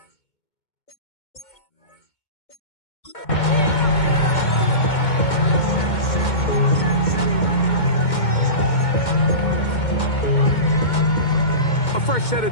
a fresh set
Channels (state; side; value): late; right; 2.2 ms